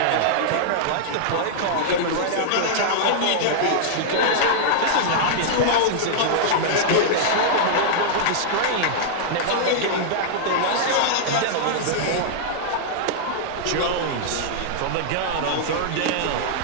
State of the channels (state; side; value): different; both; correlation -0.01